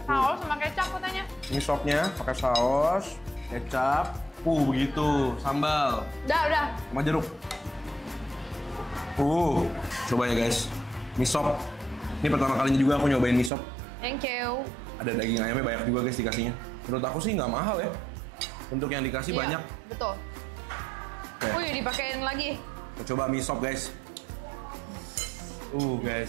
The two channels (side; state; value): left; drops out; at 13.5 s